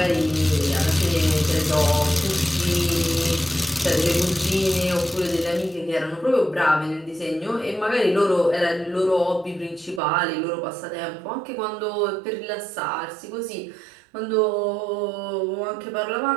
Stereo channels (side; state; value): left; drops out; at 10.0 s